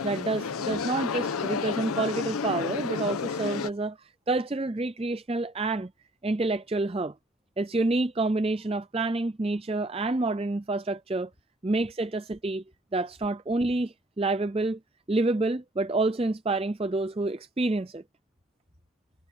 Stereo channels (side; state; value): both; normal; correlation 0.56